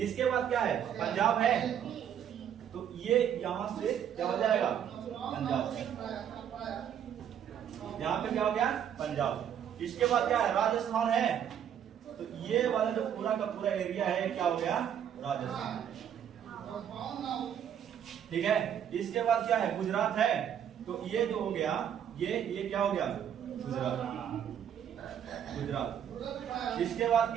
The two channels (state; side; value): quieter; left; 9.2 dB